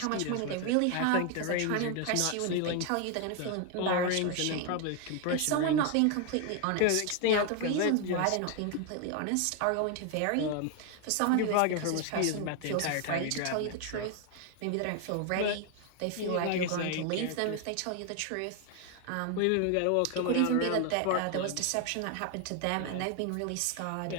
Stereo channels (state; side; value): different; both; correlation 0.01